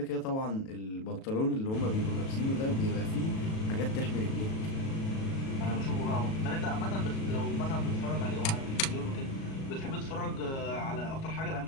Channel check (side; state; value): right; late; 37 ms